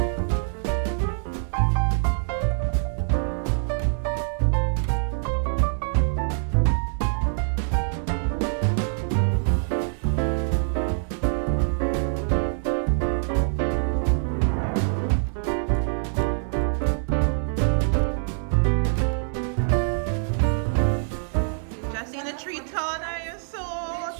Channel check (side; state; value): left; silent; 62 dB below the other